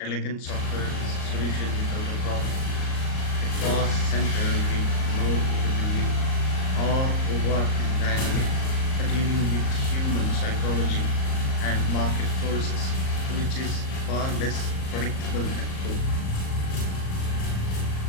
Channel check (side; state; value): right; late; 38 ms